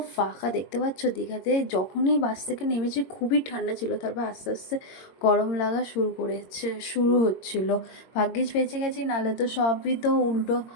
ফাঁকা, দেখতে পাচ্ছ দীঘাতে যখনই বাস থেকে নেমেছি খুবই ঠান্ডা ছিল, তারপর আস্তে আস্তে গরম লাগা শুরু হচ্ছিল। ভাগ্যিস বেঁচে গেছি, নাহলে তো সবই তো উল্টো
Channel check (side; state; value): right; late; 22 ms